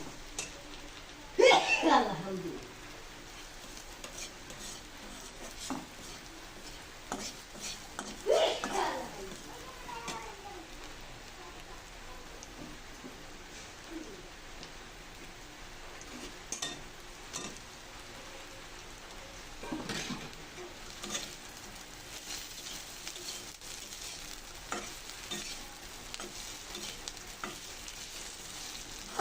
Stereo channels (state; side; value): identical; both; correlation 1.00